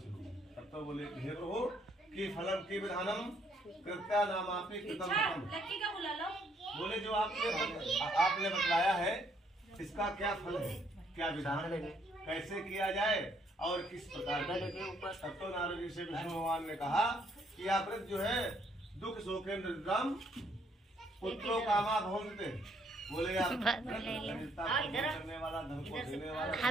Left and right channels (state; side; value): normal; both; correlation 0.69